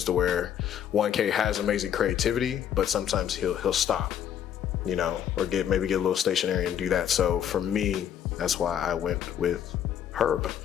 to where 1K has amazing creativity, but sometimes he'll stop, or maybe get a little stationary and do that. So for me, that's why I went with Herb.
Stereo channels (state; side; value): quieter; right; 9.6 dB